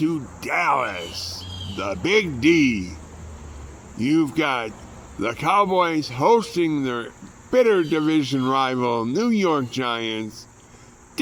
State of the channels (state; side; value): identical; both; correlation 1.00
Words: Dallas, the Big D. You've got the Cowboys hosting their bitter division rival, New York Giants.